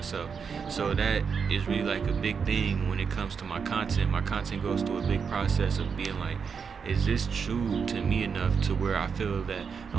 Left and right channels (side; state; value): left; quieter; 6.1 dB